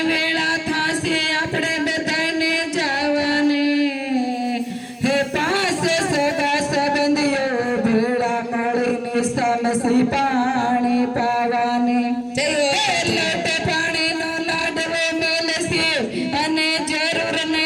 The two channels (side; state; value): both; identical; correlation 1.00